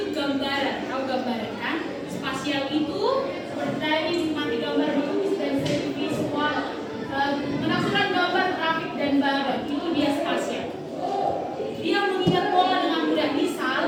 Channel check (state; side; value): identical; both; correlation 1.00